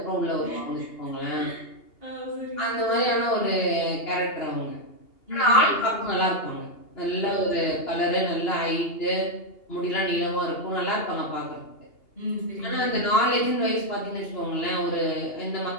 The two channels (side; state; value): right; late; 2.8 ms